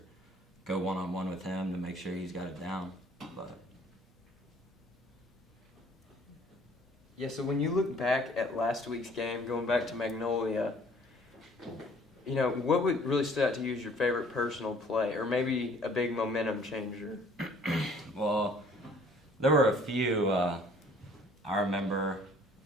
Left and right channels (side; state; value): both; normal; correlation 0.56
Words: go one-on-one with him to make sure he's got it down. But Yeah, so when you look back at last week's game, going back to Magnolia, what would really stood out to you as your favorite personal play, or maybe a big momentum changer? Well, there were a few. I remember